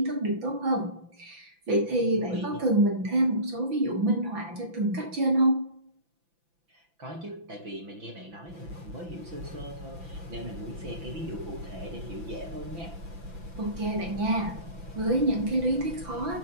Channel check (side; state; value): left; late; 5.9 ms